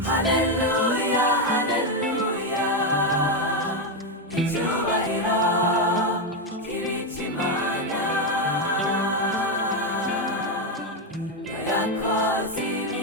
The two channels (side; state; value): both; normal; correlation 0.07